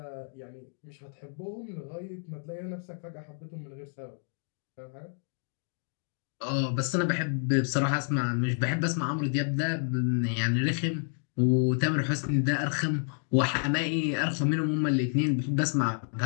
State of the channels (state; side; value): silent; right; 58 dB below the other